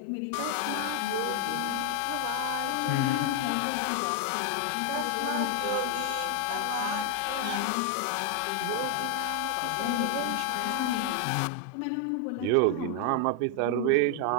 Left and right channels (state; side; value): different; both; correlation 0.00